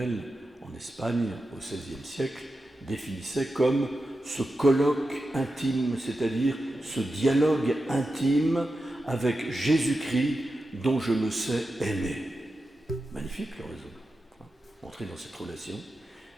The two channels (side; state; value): both; normal; correlation 0.91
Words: en Espagne au XVIe siècle, définissait comme ce colloque intime, c'est-à-dire ce dialogue intime avec Jésus-Christ dont je me sais aimé. Magnifique l'oraison. Entrer dans cette relation.